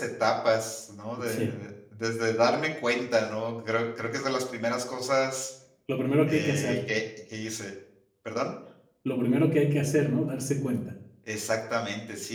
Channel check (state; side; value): identical; both; correlation 1.00